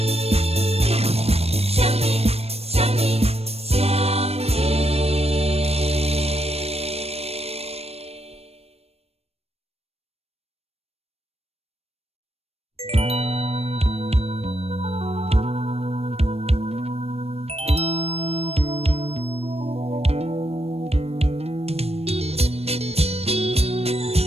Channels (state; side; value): late; left; 0.29 ms